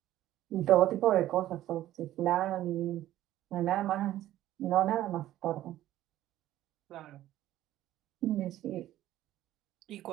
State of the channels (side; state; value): left; quieter; 13.8 dB